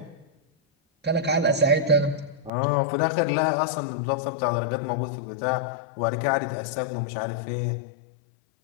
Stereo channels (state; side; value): drops out; right; at 2.5 s